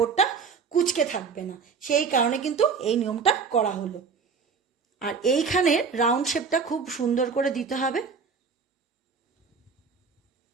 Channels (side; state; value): left; quieter; 5.5 dB